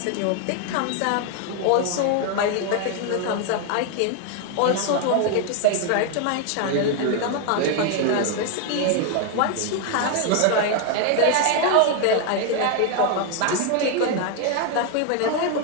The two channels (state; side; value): different; both; correlation 0.01